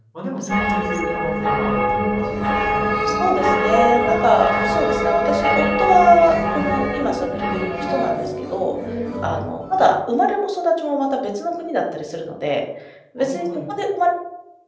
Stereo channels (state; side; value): identical; both; correlation 1.00